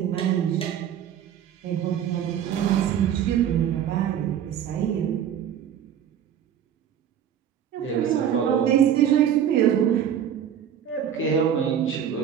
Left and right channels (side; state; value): left; quieter; 9.3 dB